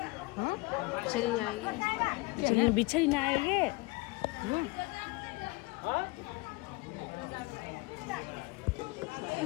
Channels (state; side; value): quieter; right; 24.5 dB